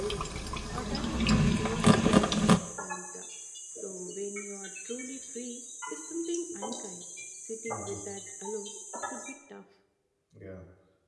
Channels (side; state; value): both; identical; correlation 1.00